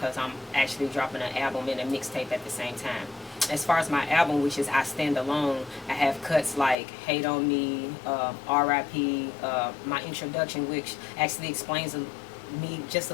I'm actually dropping an album and a mixtape at the same time. As far as my album, which is I Stand Alone, I have cuts like Hate on Me, R.I.P., my introduction, which actually explains me just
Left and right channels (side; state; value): right; drops out; at 6.8 s